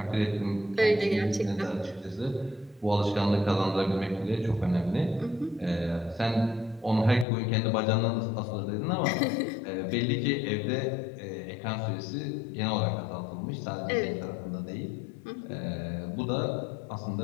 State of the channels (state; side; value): drops out; right; at 7.2 s